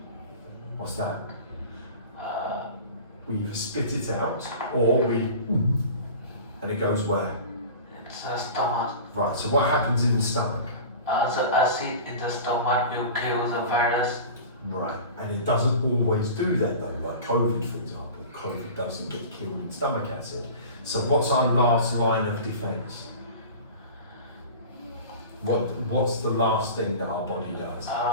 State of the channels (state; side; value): inverted; both; correlation -0.37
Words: what's that? We either spit it out or and it goes where? it's the stomach. Right, so what happens in the stomach? The acid in the stomach will kill the virus. Right, and it doesn't always do that though, like COVID for example. COVID doesn't get killed in stomach acid. So what's our last line of defense? What's the last thing that our body does?